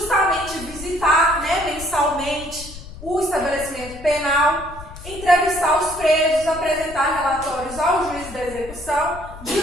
visitar, né, mensalmente o estabelecimento penal, entrevistar os presos, apresentar relatórios ao juiz da execução,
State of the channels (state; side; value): noise; left; rumble, 15 dB below the sound